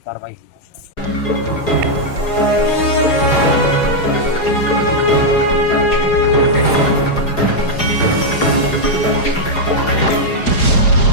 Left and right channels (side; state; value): right; late; 4.8 ms